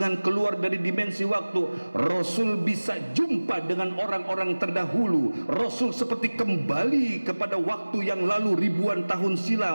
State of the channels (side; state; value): both; inverted; correlation -1.00